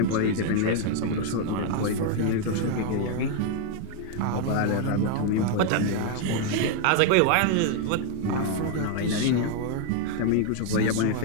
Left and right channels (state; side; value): different; both; correlation 0.00